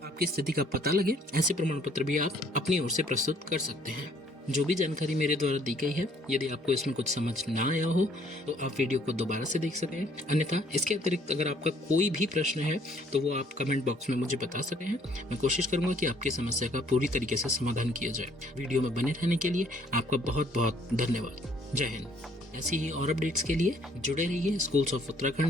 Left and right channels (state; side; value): normal; both; correlation 0.62